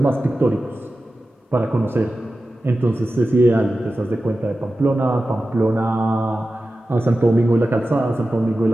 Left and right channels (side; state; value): both; normal; correlation 0.94